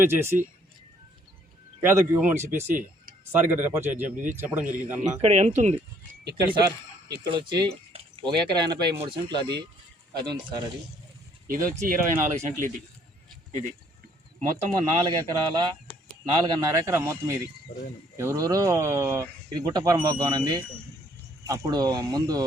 చేసి పేదకు ఇవ్వమని చెప్పేసి సార్ గారు రెఫర్ చెప్పడం జరిగింది. అన్న ఇక్కడ ఎంత ఉంది? ఇక్కడ సార్ ఇక్కడ వచ్చి 1 ఎకరా 83 సెంట్లు అది ఉంది సార్. ఇది వచ్చి 24 సెంట్లు. ఇది మొత్తము 4 ఎకరాల 4.5 ఎకరా మొత్తం. ఇది ఎవరెవరో ఇది గుట్టపురం బాగుంది. అప్పుడు ముందు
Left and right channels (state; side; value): normal; both; correlation 0.64